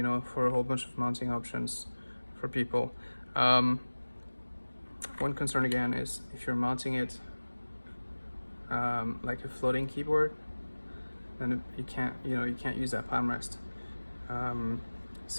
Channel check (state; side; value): inverted; both; correlation -1.00